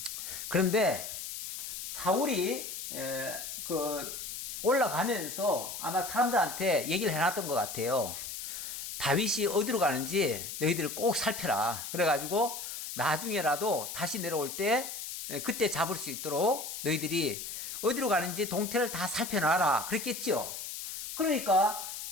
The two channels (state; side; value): noise; left; hiss, 7 dB below the sound